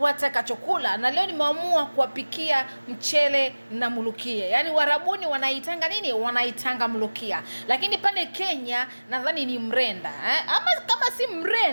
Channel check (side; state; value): both; inverted; correlation -1.00